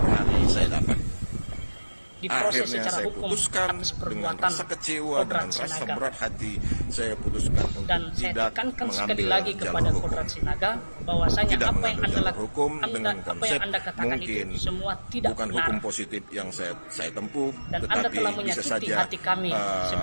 hari saya dapat. diproses Akhirnya secara saya hukum putuskan atas dengan perbuatan rasa kecewa, Kodrat dengan rasa Sinaga. berat hati, saya putuskan untuk Dan saya tidak tekankan sekali mengambil lagi jalur kepada hukum. Kodrat Sinaga bahwasanya Tidak apa yang mengambil Anda jalur lakukan, hukum dengan apa konsep yang Anda katakan mungkin itu semua tidak bukan benar. hukum positif yang saya tempuh, Dan tetapi Anda telah bisa menyakiti saja hati kami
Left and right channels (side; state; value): both; inverted; correlation -1.00